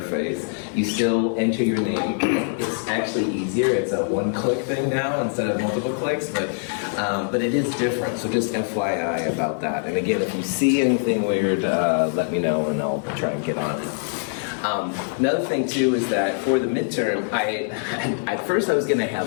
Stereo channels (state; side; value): silent; right; 63 dB below the other